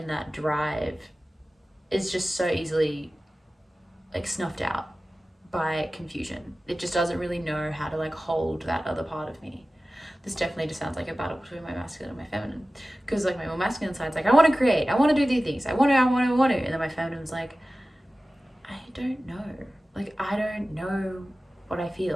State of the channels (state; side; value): normal; both; correlation 0.96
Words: that drive is just so easily like snuffed out by confusion. It just doesn't really know how to like hold that other part of me. This definitely just sounds like a battle between my masculine and my feminine. Because like my more masculine side's like, I want to create, I want to do these things, I want to. And then my feminine's like, I don't know. Like, I don't know what I